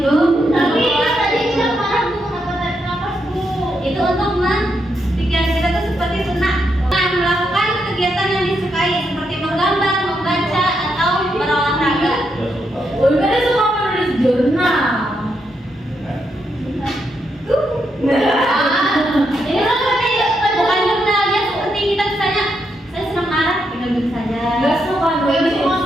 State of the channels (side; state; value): both; normal; correlation 0.81